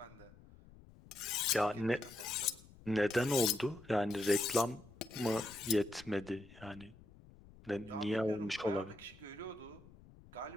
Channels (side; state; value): left; noise; rumble, 22 dB below the sound